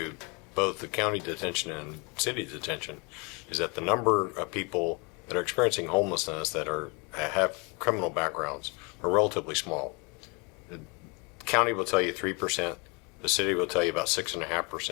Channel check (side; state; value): right; quieter; 31.2 dB